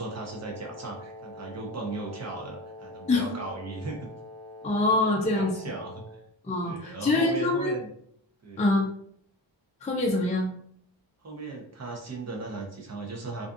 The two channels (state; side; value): normal; both; correlation 0.35